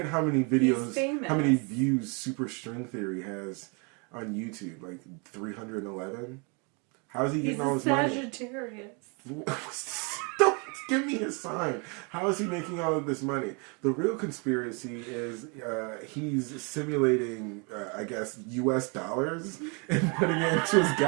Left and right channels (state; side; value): quieter; left; 33.4 dB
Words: how many videos, how many views superstring theory has on YouTube. Like 311. How is he getting all his money? He's a Sagittarius. Don't give me a sign. How is he making all of this money? The real conspiracy is he's simulating, I guess, US dollars and putting it into his